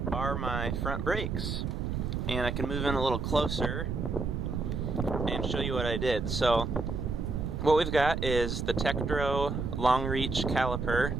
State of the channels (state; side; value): noise; right; rumble, 2 dB below the sound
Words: are my front brakes. And I can move in a little closer and show you what I did. So what we've got is the Tektro long reach caliper,